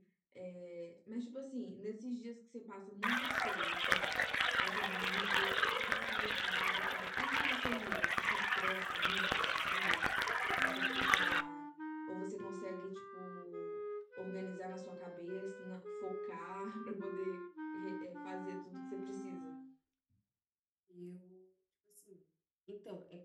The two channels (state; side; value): identical; both; correlation 1.00